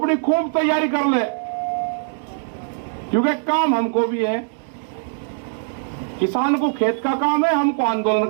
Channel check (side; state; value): left; silent; digital silence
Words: खूब तैयारी कर ले, क्योंकि काम हमको भी है। किसान को खेत का काम है, हमको आंदोलन